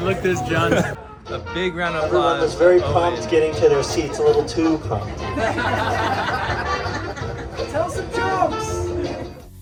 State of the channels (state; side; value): identical; both; correlation 1.00